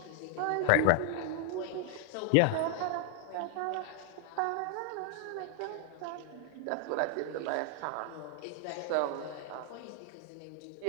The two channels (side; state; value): both; different; correlation 0.00